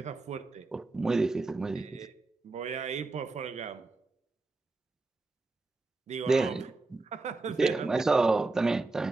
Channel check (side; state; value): left; quieter; 3.4 dB